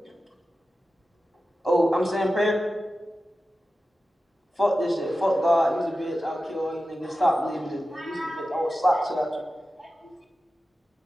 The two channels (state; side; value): normal; both; correlation 0.93